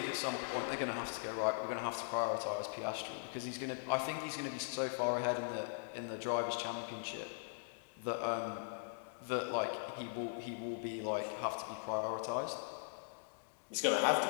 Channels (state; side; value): silent; right; digital silence